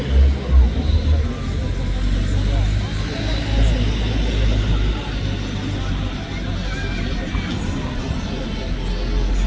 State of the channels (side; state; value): both; identical; correlation 1.00